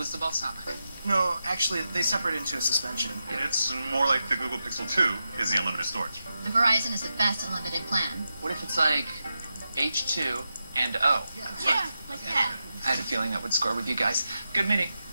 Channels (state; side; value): inverted; both; correlation -0.89